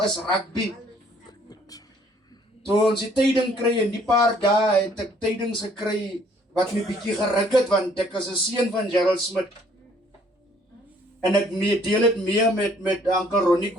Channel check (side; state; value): both; normal; correlation 0.61